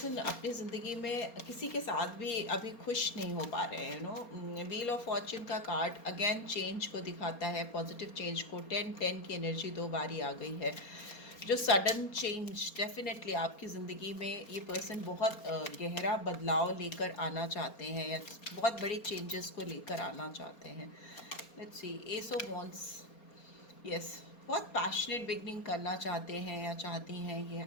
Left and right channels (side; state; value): right; late; 4.3 ms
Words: अपनी ज़िंदगी में किसी के साथ भी अभी खुश नहीं हो पा रहे हैं। व्हील ऑफ फॉर्च्यून का कार्ड अगेन चेंज को दिखाता है, पॉजिटिव चेंज को। 10-10 की एनर्जी 2 बारी आ गई है, जो सडन चेंज डेफिनेटली आपकी ज़िंदगी में ये पर्सन बहुत गहरा बदलाव लेकर आना चाहते हैं, या बहुत बड़ी चेंजेस को लेकर आना चाहते हैं। Let's see, S of wands, yes, बहुत पैशनेट बिगनिंग करना चाहते हैं या चाहती हैं ये